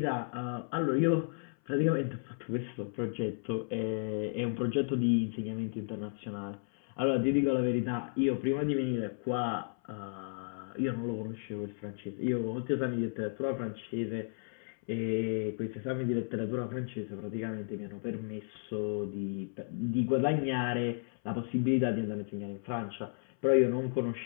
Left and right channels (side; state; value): right; silent; 55 dB below the other